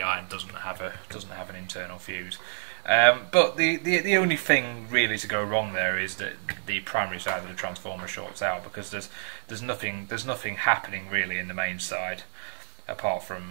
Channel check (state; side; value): silent; left; 59 dB below the other